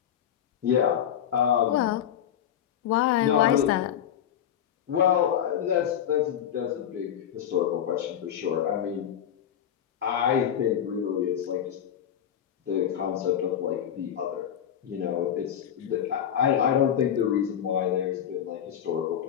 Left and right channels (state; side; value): quieter; right; 9.6 dB